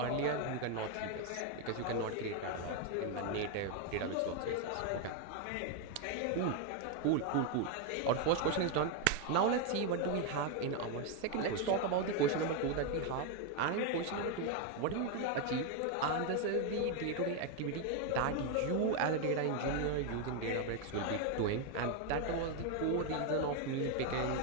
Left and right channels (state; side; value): different; both; correlation 0.01